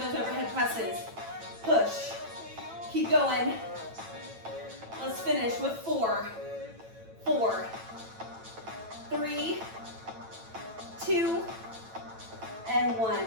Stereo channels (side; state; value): left; late; 9.0 ms